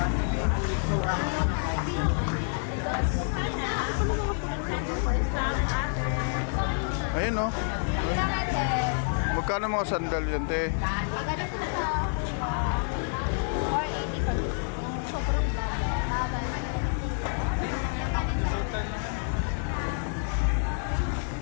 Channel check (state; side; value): silent; right; 59 dB below the other